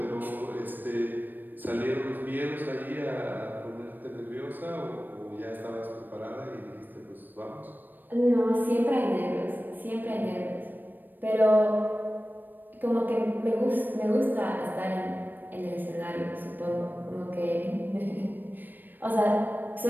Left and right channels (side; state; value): left; late; 0.091 ms